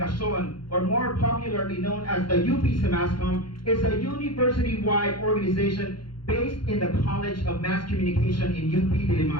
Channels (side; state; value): right; late; 0.72 ms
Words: or more popularly known as the UP Samascom, is a university-wide organization based in the College of Mass Communication in UP